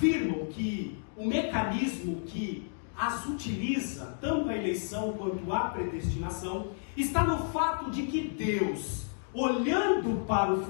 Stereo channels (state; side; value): silent; right; digital silence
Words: que o mecanismo que as utiliza, tanto a eleição quanto a predestinação, está no fato de que Deus, olhando para o